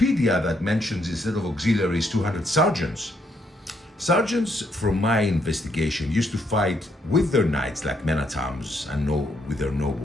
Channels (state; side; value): normal; both; correlation 0.73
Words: that mentions instead of auxiliaries 200 sergeants. Sergeants, from my investigation, used to fight with their knights like men at arms and with their